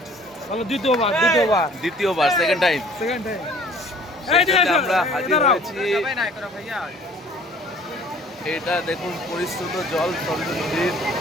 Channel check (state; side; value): normal; both; correlation 0.52